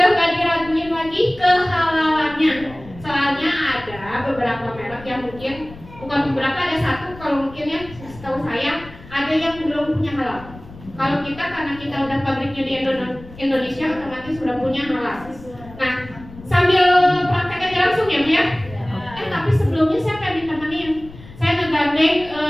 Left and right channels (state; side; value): noise; left; rumble, 18 dB below the sound